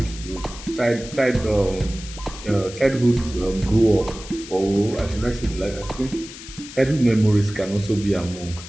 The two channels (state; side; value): noise; left; hiss, 14 dB below the sound